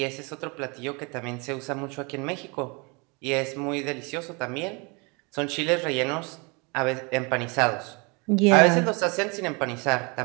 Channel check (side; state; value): left; quieter; 30.1 dB